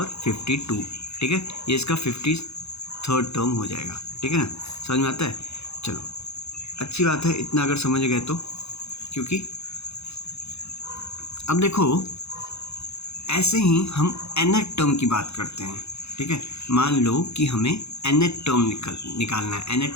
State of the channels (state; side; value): late; right; 0.79 ms